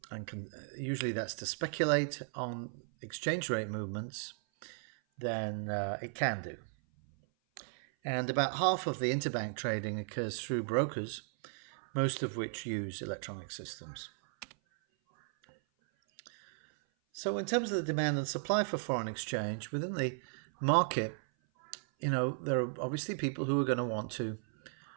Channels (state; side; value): silent; left; 54 dB below the other